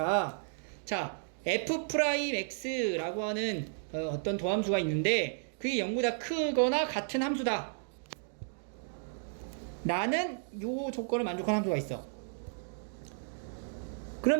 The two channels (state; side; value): silent; left; digital silence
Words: 자, f'x라고 하는 어떤 도함수가 있는데, 그게 0보다 크거나 같은 함수다 라는 요 조건을 만족하는 함수가 있어.